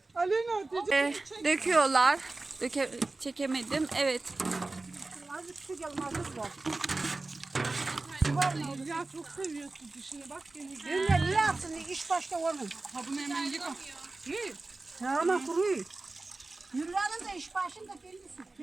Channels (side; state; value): left; quieter; 3.3 dB